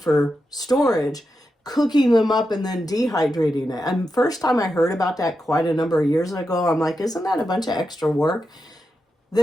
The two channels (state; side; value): normal; both; correlation 0.88